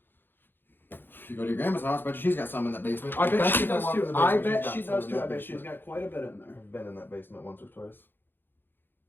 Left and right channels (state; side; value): late; right; 0.098 ms